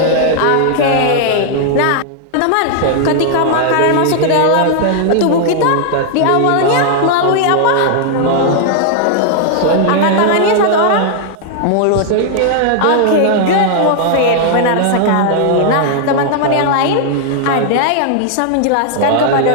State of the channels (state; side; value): different; both; correlation -0.01